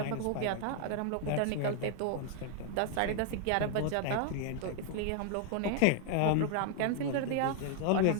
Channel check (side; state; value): both; different; correlation 0.00